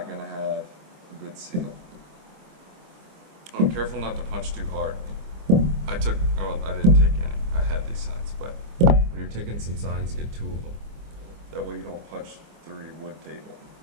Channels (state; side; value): late; left; 25 ms